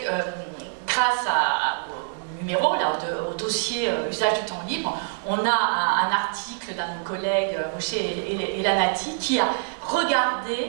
grâce au numéro, là, au dossier usage du temps libre, on a un article d'un de nos collègues, Rocher Elanati, qui a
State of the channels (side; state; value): left; silent; digital silence